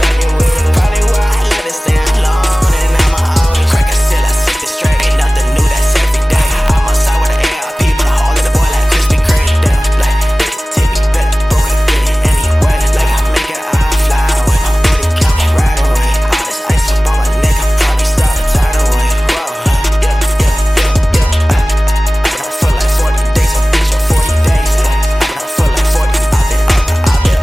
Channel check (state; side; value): normal; both; correlation 0.97